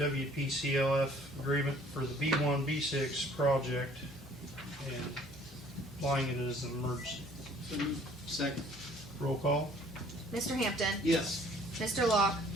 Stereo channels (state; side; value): normal; both; correlation 0.56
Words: agreement for the B1, B6 project and applying it as an emergency. So moved. Second. Roll call. Mr. Hampton, Yes. Mr. Locke,